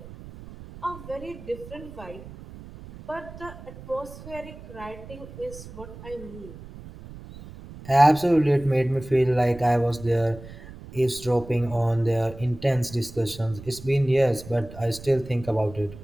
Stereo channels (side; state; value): right; noise; rumble, 15 dB below the sound